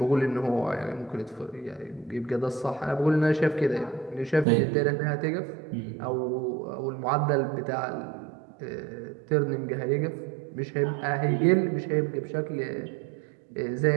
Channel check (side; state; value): left; drops out; at 4.5 s